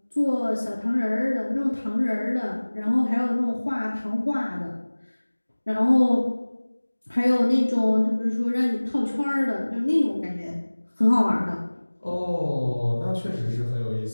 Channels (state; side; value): inverted; both; correlation -1.00